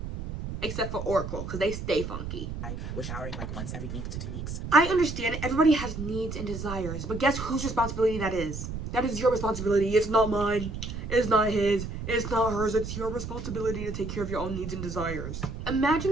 Except for Oracle, because they stay funky. We're showering like once every week to 2 weeks. I understand everybody has needs and desires, but guess whose responsibility that is? That is your responsibility. It's not mine. It's not his. It's not hers. It's your responsibility to take care of your own needs and desires.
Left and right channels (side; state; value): right; noise; rumble, 7 dB below the sound